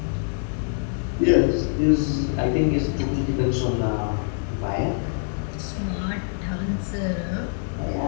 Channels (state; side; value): silent; right; 59 dB below the other